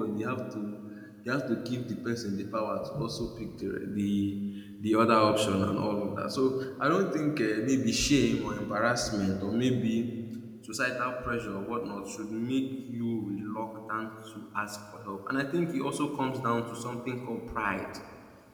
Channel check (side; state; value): both; identical; correlation 1.00